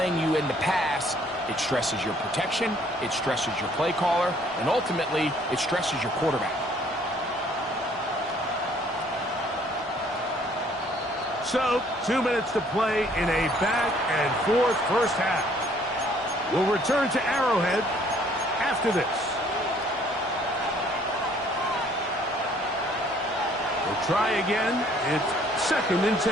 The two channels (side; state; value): both; normal; correlation 0.61